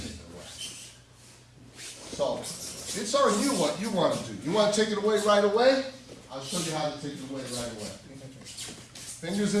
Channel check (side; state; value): both; identical; correlation 1.00